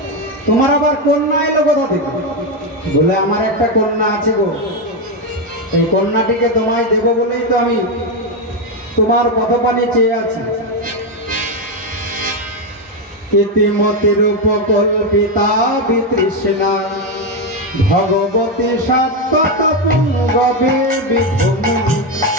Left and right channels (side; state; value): both; normal; correlation 0.07